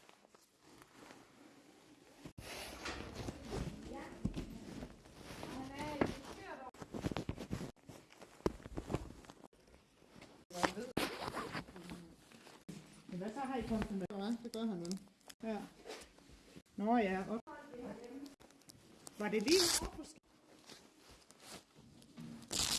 Men hvad så har I kommet med? Det gør han nu. Ja. Nå ja. Var det lige over?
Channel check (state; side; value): identical; both; correlation 1.00